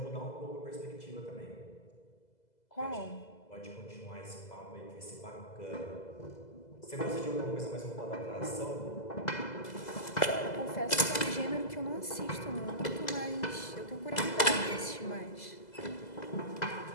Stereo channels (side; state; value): right; late; 2.0 ms